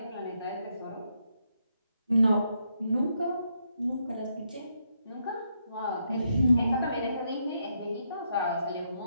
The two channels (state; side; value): inverted; both; correlation -0.78